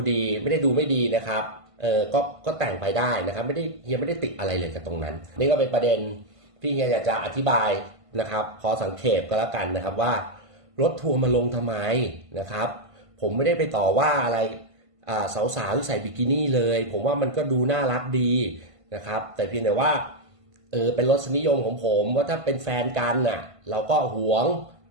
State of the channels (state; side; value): late; left; 1.5 ms